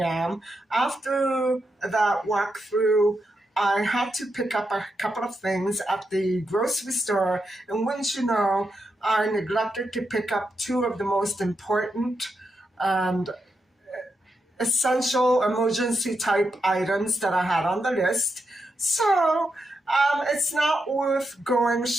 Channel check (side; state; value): both; normal; correlation 0.84